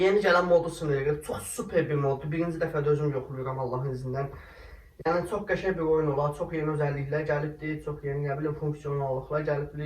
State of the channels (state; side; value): identical; both; correlation 1.00